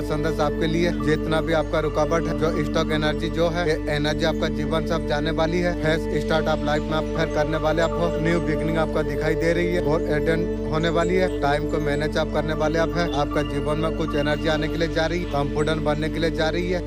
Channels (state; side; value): identical; both; correlation 1.00